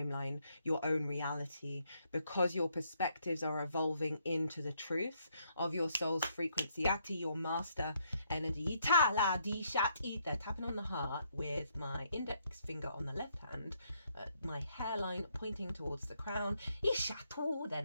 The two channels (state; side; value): inverted; both; correlation -0.73